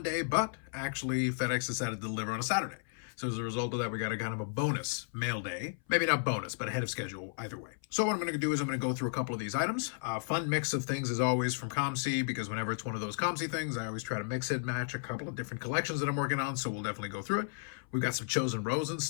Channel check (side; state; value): right; silent; 55 dB below the other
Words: but actually FedEx decided to deliver on a Saturday. So as a result of that, we got a kind of a bonus mail day. Maybe not bonus, but ahead of schedule either way. So what I'm going to do is I'm going to go through a couple of these items. Fun mix of things as always from COMC, because whenever it's one of those COMC things, I always try to mix it, match a couple of different collections that I'm working on, so we'll definitely go through it. We've got some chosen rows and